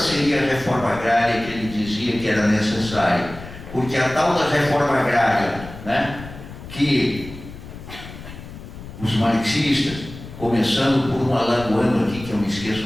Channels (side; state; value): left; noise; rumble, 14 dB below the sound